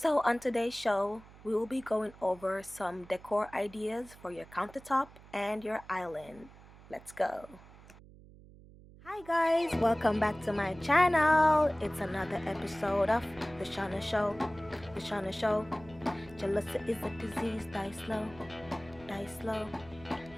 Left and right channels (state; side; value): noise; right; hum, 21 dB below the sound